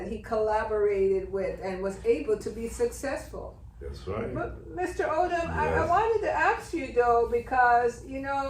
he collaborated with and was able to be successful. That's right. But Mr. Odom, I wanted to ask you though, because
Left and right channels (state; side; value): identical; both; correlation 1.00